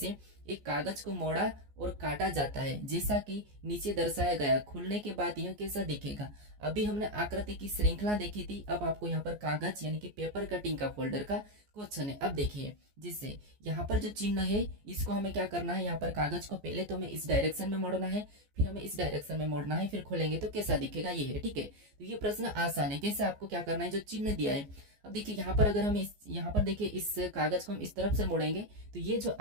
एक कागज को मोड़ा और काटा जाता है जैसा कि नीचे दर्शाया गया, खुलने के बाद यह कैसा दिखेगा। अभी हमने आकृति की श्रृंखला देखी थी, अब आपको यहाँ पर कागज यानी कि पेपर कटिंग का फोल्डर का क्वेश्चन है। अब देखिए जिससे यहाँ पर जो चिन्ह है इसको हमें क्या करना है, यहाँ पर कागज को पहले तो हमें इस डायरेक्शन में मोड़ना है, फिर हमें इस डायरेक्शन में मोड़ना है, फिर खोलेंगे तो कैसा दिखेगा, ये है, ठीक है। तो ये प्रश्न आसान है। कैसे, आपको क्या करना है, जो चिन्ह दिया है। अब देखिए यहाँ पर अगर हम यहाँ पर देखिए इस कागज को हम इस तरफ से मोड़ेंगे तो ये जो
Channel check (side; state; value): left; late; 14 ms